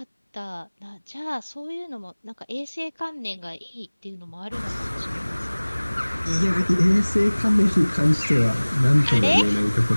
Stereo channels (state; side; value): inverted; both; correlation -1.00